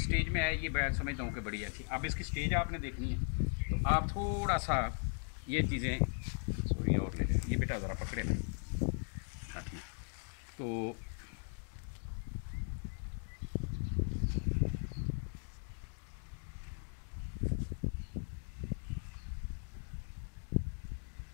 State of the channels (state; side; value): silent; right; 52 dB below the other